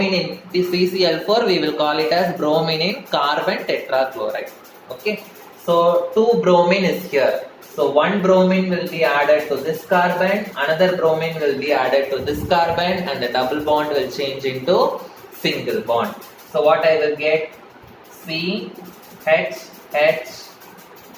in CCl4, we will call it as bromine in carbon tetrachloride. Okay. So 2 bromine is here. So 1 bromine will be added to this carbon, another bromine will be added to this carbon, and the double bond will change into single bond. So what I will get? CH,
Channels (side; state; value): both; identical; correlation 1.00